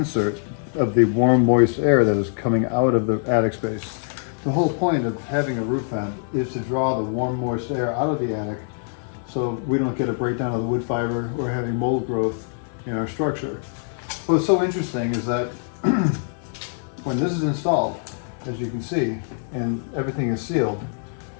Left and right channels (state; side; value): silent; right; 63 dB below the other